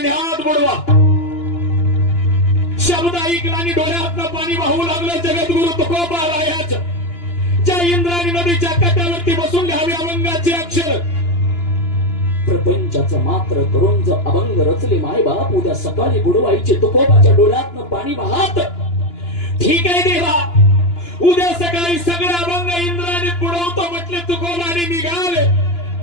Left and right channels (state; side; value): late; right; 2.9 ms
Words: बुडवा. शब्द ऐकला आणि डोळ्यातनं पाणी वाहू लागलं जगद्गुरु तुकोबारायाचं. ज्या इंद्रायणी नदीच्या काठावरती बसून लिहावे अभंगाचे अक्षर. प्रपंचाचं मात्र करून जर अभंग रचले मायबाप, उद्या सकाळी बुडवायचे तुकोबाच्या डोळ्यातनं पाणी वाहत. ठीक आहे देवा, उद्या सकाळी सगळे अभंग इंद्रायणीत बुडवतो म्हटले तुकोबाने निघाले.